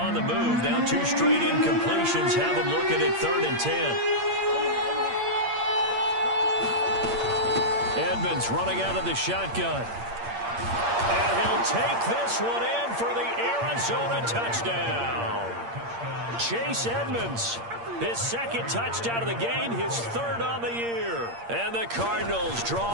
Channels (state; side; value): late; left; 8.7 ms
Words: the move. Now 2 straight incompletions have them looking at 3rd and 10. Edmonds running out of the shotgun. And he'll take this one in for the Arizona touchdown. Chase Edmonds, his 2nd touchdown of the game, his 3rd on the year. And the Cardinals